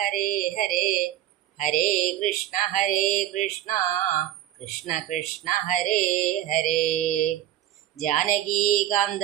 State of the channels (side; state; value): left; quieter; 12.5 dB